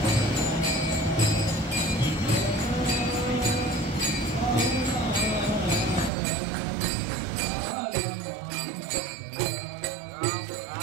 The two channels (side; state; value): left; drops out; at 6.1 s